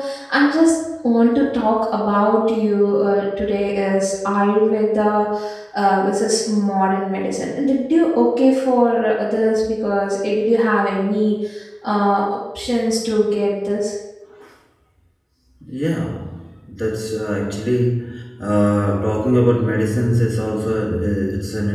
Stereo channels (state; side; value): identical; both; correlation 1.00